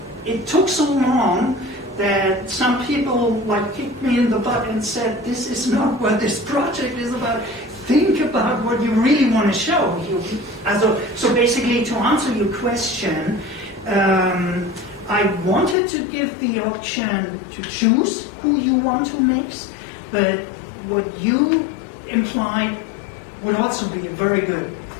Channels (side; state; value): right; drops out; at 15.8 s